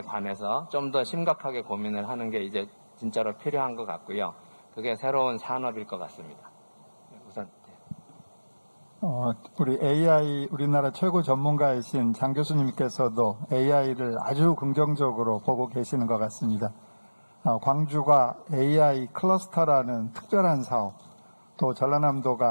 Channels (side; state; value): both; inverted; correlation -1.00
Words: 관해서 좀 더 심각하게 고민을 하는 게 이제 진짜로 필요한 것 같고요. 그게 새로운 산업일 것 같습니다. 우선 우리 AI 우리나라 최고 전문가이신 장 교수님께서도 AI를 아주 긍정적으로 보고 계시는 것 같습니다. 광주가 AI 클러스터라는 특별한 사업, 또